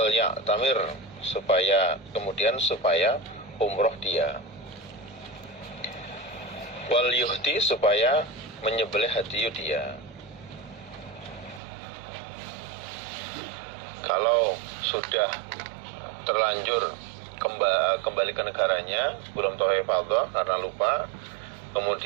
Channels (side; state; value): left; drops out; at 11.6 s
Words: ya'tamir, supaya umroh dia, wal yuhdi, supaya menyembelih hadiyu dia. Kalau sudah terlanjur kembali ke negaranya, belum tawaf ifadah karena lupa,